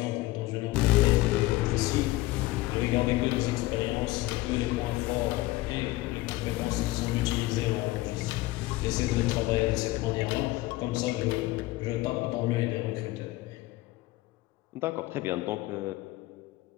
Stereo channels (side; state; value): right; quieter; 19.1 dB